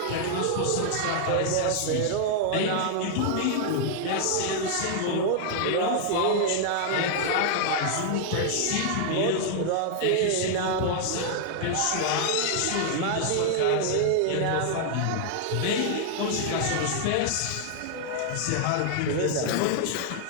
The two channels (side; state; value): both; different; correlation 0.00